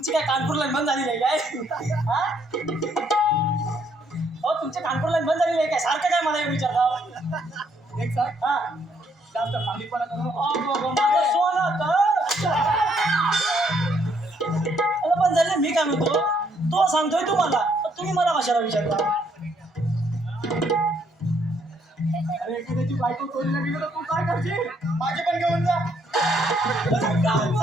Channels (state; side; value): normal; both; correlation 0.70